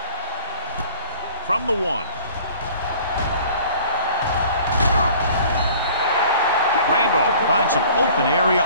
From the 1. Randolph finds some open area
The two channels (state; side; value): inverted; both; correlation -0.48